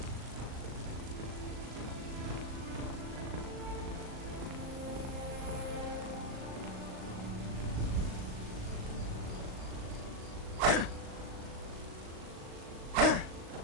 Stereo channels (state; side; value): late; left; 38 ms